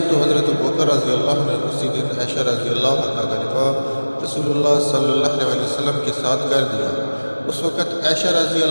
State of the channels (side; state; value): both; inverted; correlation -1.00